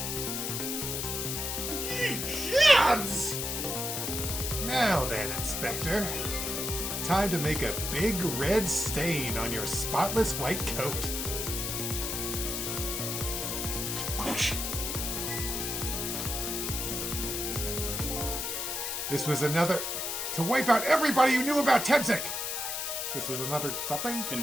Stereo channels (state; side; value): noise; left; hiss, 2 dB below the sound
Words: Ye gods! Now then, Inspector. time to make a big red stain on your spotless white coat. This was another... to wipe out everybody who knew about Tebzik! This was another something?